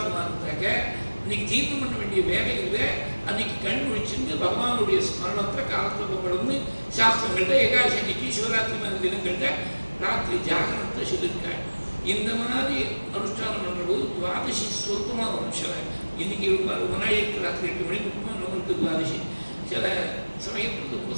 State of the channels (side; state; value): both; inverted; correlation -1.00